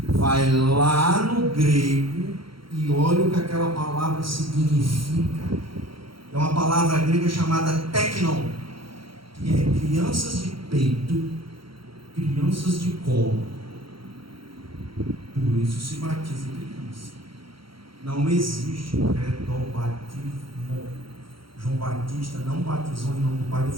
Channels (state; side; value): late; left; 0.74 ms